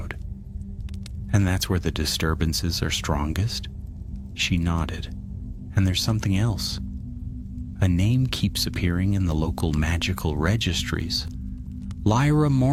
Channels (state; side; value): identical; both; correlation 1.00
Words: "And that's where the disturbances are strongest?" She nodded. "And there's something else. A name keeps appearing in the local magical registries. Lyra